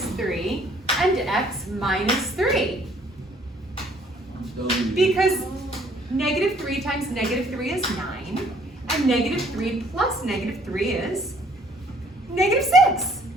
3 and x minus 3. Because -3 times -3 is 9, and -3 plus -3 is -6.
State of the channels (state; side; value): normal; both; correlation 0.61